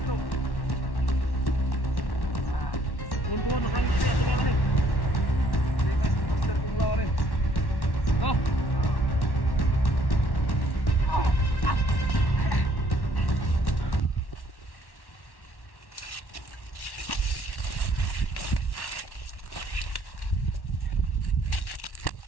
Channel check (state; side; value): late; right; 1.1 ms